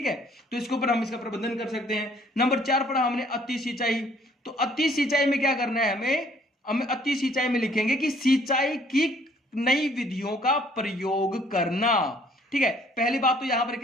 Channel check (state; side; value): normal; both; correlation 0.61